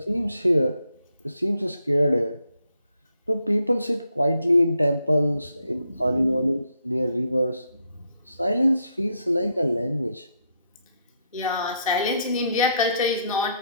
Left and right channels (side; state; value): both; inverted; correlation -0.76